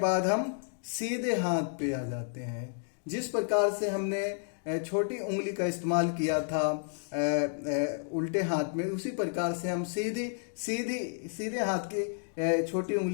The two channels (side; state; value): right; silent; digital silence